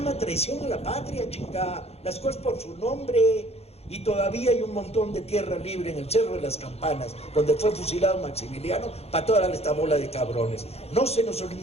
traición a la patria, chingada. Las cosas por su nombre. Y todavía hay un montón de tierra libre en el Cerro de las Campanas, donde fue fusilado Maximiliano, para toda esta bola de cabrones. No se nos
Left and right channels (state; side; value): late; right; 0.30 ms